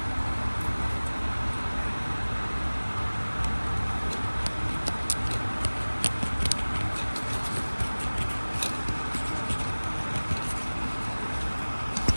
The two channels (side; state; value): both; inverted; correlation -1.00